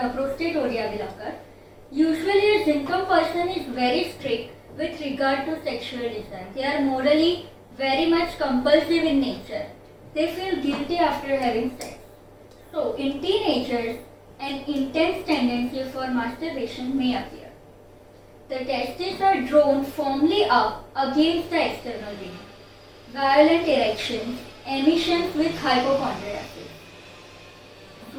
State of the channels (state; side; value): identical; both; correlation 1.00